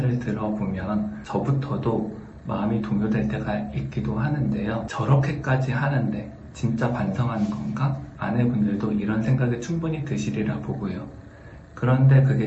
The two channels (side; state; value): both; identical; correlation 1.00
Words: 들어보면 저부터도 마음이 동요될 때가 있기도 하는데요. 저렇게까지 하는데 진짜 반성하는 건가? 아내분들도 이런 생각이 충분히 드시리라 보고요. 그런데